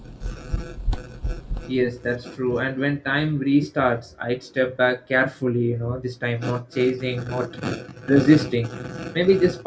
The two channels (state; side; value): identical; both; correlation 1.00